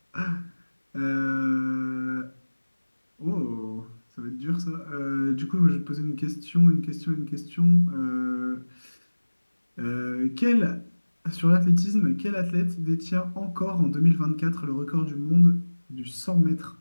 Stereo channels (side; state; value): both; inverted; correlation -1.00